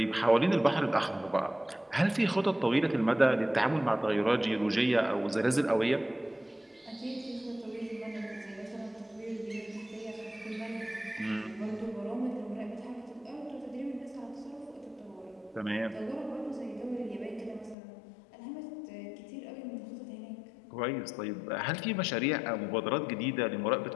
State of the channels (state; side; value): drops out; right; at 17.8 s